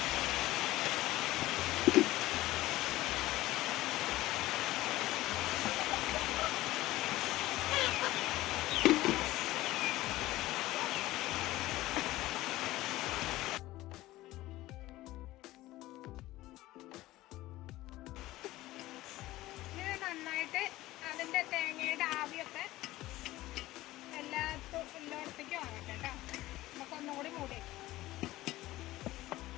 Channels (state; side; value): quieter; right; 17.0 dB